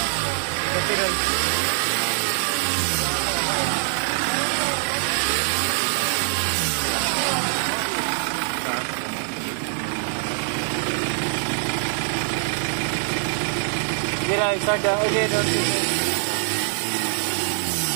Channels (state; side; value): silent; left; 63 dB below the other